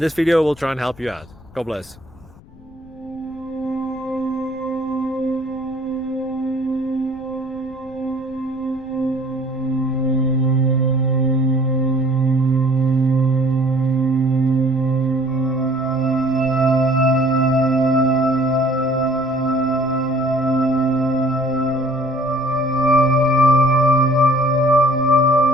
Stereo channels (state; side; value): noise; left; rumble, 23 dB below the sound